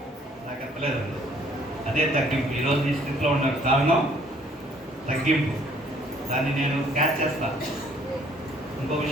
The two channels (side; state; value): both; normal; correlation 0.60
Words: నాకు చెప్పలేదు. అదే తగ్గింపు. ఈరోజు ఈ స్థితిలో ఉన్న కారణం తగ్గింపు. దాన్ని నేను క్యాచ్ చేస్తాను. ఇంకో